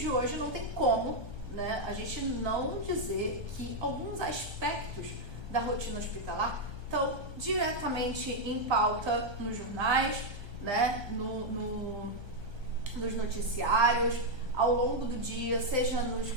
hoje não tem como, né, a gente não dizer que alguns aspectos da rotina hospitalar estão diretamente em pauta nos jornais, né, nos noticiários, ao longo do dia, seja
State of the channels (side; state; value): left; late; 1.3 ms